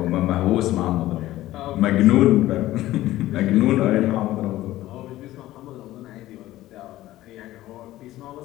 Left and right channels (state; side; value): quieter; right; 15.6 dB